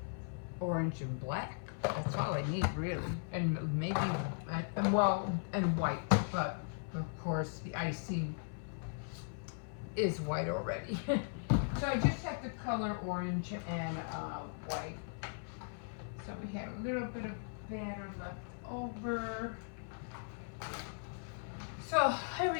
and black. That's all I need, really, and maybe and white. But of course, the icing is white already. So I just have to color orange and white. So we had a little bit of batter left over. So here we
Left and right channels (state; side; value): silent; right; 52 dB below the other